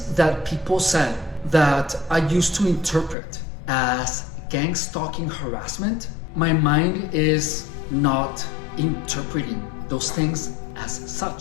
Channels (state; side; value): drops out; right; at 3.2 s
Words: that people said that I used to interpret as gang-stalking harassment, my mind is not interpreting those things as